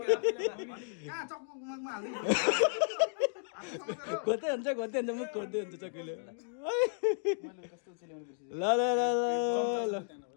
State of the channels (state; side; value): silent; right; digital silence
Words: खोज्दै हुन्छ मुख खोज्दै हुन्छ चक्कीले ल ल ल ल